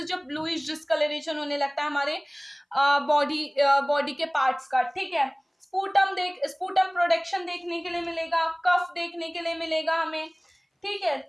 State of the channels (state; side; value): identical; both; correlation 1.00